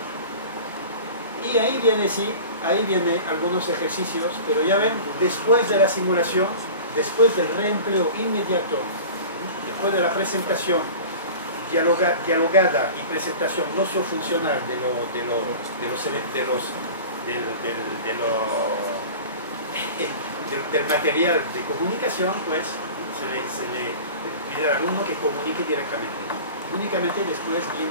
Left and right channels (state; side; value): inverted; both; correlation -0.37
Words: ¿Okay? Y ahí viene, sí, ahí vienen algunos ejercicios, pero ya ven, después de la simulación, después del reempleo inmediato, después de la presentación dialogada y presentación no-funcional del material de comunicación, pues se le pide al alumno que comunique directamente. Únicamente después